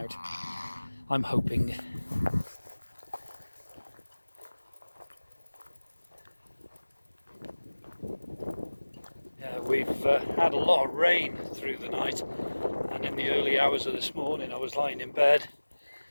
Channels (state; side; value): inverted; both; correlation -1.00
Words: I'm hoping. Yeah, we've had a lot of rain through the night, and in the early hours of this morning I was lying in bed